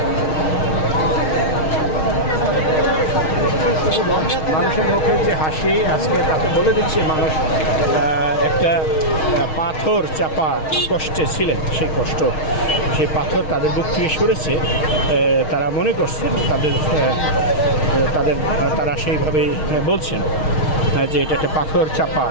মানুষের মুখে যে হাসি আজকে তাতে বলে দিচ্ছে মানুষ একটা পাথর চাপা কষ্টে ছিলেন, সেই কষ্ট, সেই পাথর তাদের বুক থেকে সরেছে। তারা মনে করছেন তারা সেইভাবেই বলছেন যে এটা একটা পাথর চাপা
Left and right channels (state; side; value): late; right; 6.4 ms